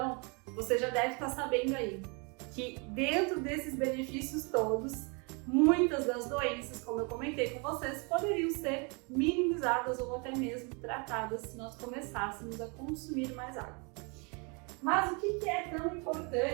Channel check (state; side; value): quieter; left; 32.6 dB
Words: você já deve estar sabendo aí que dentro desses benefícios todos, muitas das doenças, como eu comentei com vocês, poderiam ser minimizadas ou até mesmo tratadas se nós começássemos a consumir mais água. Mas o que é tão